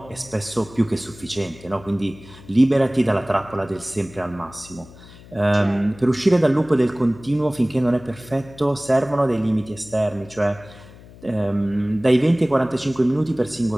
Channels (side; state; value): left; noise; hum, 20 dB below the sound